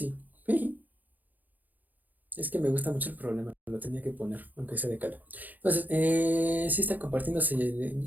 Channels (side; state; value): left; late; 0.083 ms